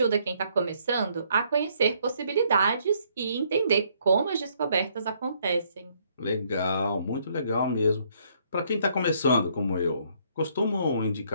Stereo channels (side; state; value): both; inverted; correlation -0.68